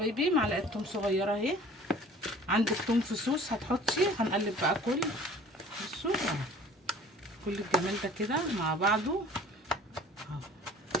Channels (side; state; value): both; normal; correlation 0.48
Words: معلقه توم صغيره اهي. عندك توم فصوص هتحطي. هنقلب بقى بصوا كل الجمال ده كده مع بعضه اهو.